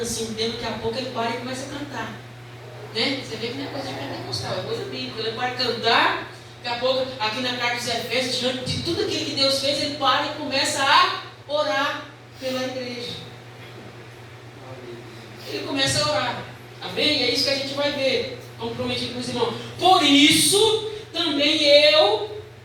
assim, um tempo, daqui a pouco ele para e começa a cantar. Né? Você vê que não é coisa de pentecostal, é coisa bíblica. Ele para cantar, daqui a pouco, aqui na carta dos Efésios, diante de tudo aquilo que Deus fez, ele para e começa a orar pela igreja. Ele começa a orar. Amém? É isso que a gente vai ver. Comprometido com os irmãos. Por isso, também eu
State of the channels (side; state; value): both; identical; correlation 1.00